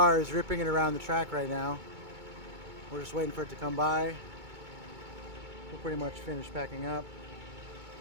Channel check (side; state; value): left; late; 2.2 ms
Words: is ripping it around the track right now. We're just waiting for it to come by. We're pretty much finished packing up.